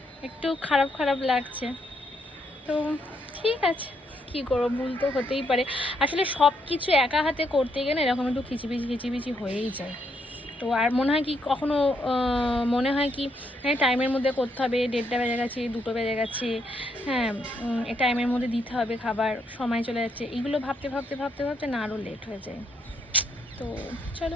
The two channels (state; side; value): normal; both; correlation 0.75